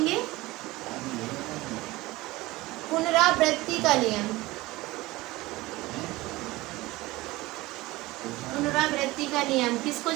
पुनरावृत्ति का नियम। पुनरावृत्ति का नियम किसको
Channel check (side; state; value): left; quieter; 19.7 dB